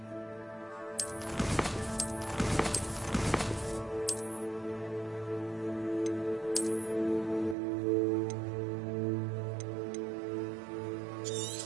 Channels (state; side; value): drops out; left; at 7.6 s